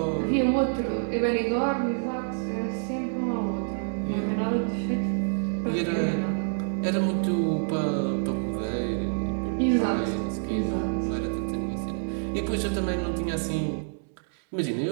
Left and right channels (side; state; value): left; silent; digital silence